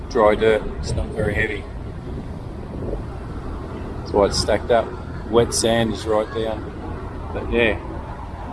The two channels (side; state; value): both; identical; correlation 1.00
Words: dry dirt. It's not very heavy. That's why it's stacked up. Wet sand is right down. But yeah.